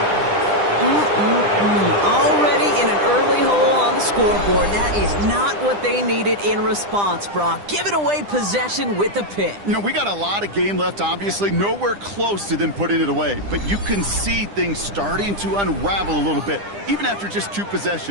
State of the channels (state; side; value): late; left; 10 ms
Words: Already in an early hole on the scoreboard. That is not what they needed in response, Brock. Giving away possession with the pick. You know, we got a lot of game left, obviously. Nowhere close to them putting it away. But you can see things starting to unravel a little bit, even after just 2